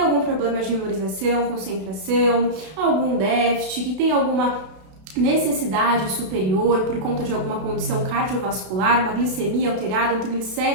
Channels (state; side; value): late; left; 32 ms